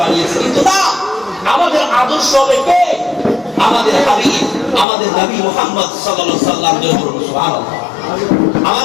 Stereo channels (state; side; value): drops out; right; at 4.9 s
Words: বানিয়েছি। কিন্তু না, আমাদের আদর্শ হবে কে? আমাদের হাবিব, আমাদের নবী মুহাম্মদ সাল্লাল্লাহু আলাইহি ওয়াসাল্লাম। সুবহানাল্লাহ।